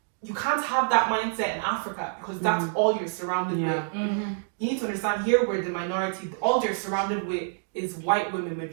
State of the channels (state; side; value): silent; left; digital silence